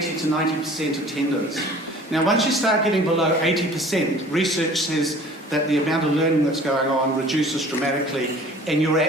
to 90% attendance. Now, once you start getting below 80%, research says that the amount of learning that's going on reduces dramatically, and your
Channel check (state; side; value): normal; both; correlation 0.48